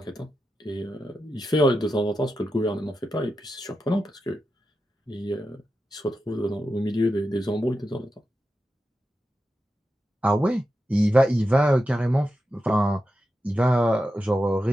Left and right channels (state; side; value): normal; both; correlation 0.89